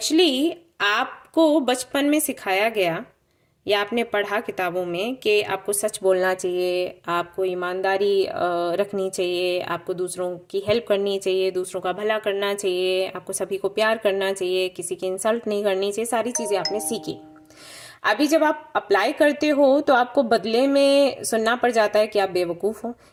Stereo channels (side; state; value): both; identical; correlation 1.00